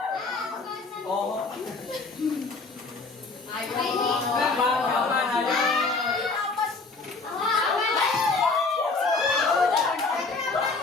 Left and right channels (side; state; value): right; quieter; 3.9 dB